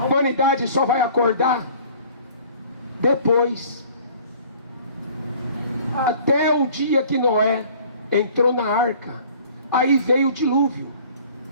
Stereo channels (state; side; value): inverted; both; correlation -0.50